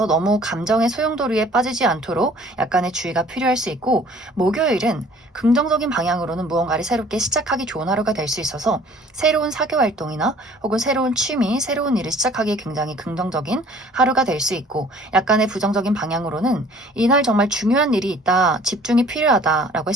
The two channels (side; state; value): both; normal; correlation 0.53